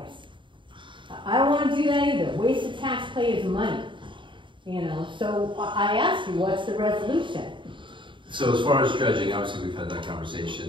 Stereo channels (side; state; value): left; late; 0.24 ms